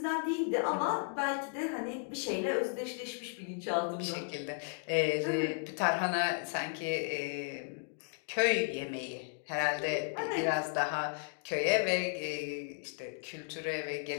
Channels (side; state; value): right; silent; 55 dB below the other